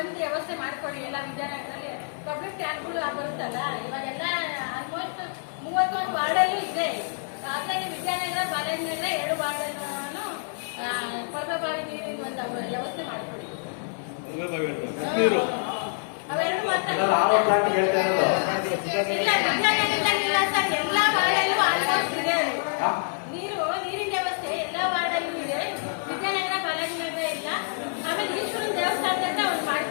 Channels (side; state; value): right; silent; 60 dB below the other